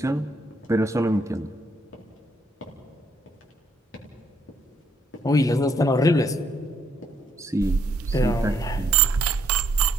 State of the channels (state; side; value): normal; both; correlation 0.69